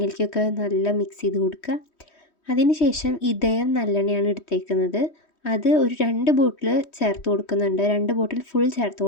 നല്ല മിക്സ് ചെയ്ത് കൊടുക്കുക. അതിന് ശേഷം ഇതയം നല്ലെണ്ണയാണ് എടുത്തേക്കുന്നത്, അത് ഒരു 2 ബോട്ടിൽ ചേർത്ത് കൊടുക്കുന്നുണ്ട്, 2 ബോട്ടിൽ ഫുൾ ചേർത്ത്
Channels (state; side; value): late; right; 3.1 ms